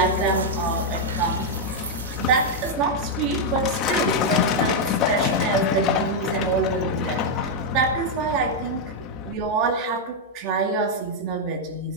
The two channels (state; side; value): normal; both; correlation -0.01